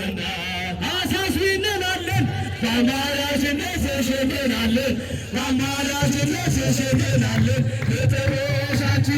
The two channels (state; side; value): identical; both; correlation 1.00